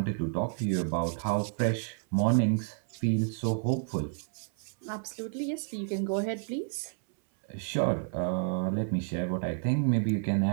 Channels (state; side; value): silent; left; 58 dB below the other